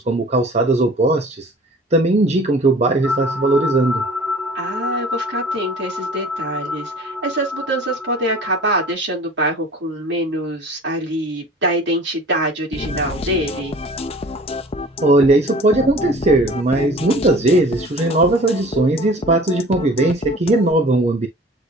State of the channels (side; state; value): both; normal; correlation 0.45